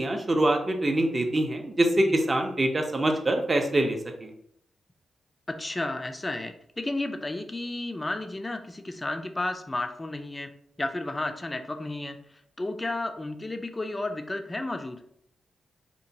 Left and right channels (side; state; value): both; normal; correlation 0.92